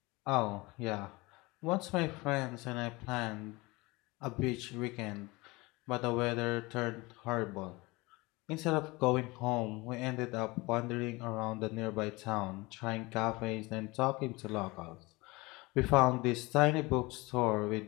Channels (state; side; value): quieter; right; 23.2 dB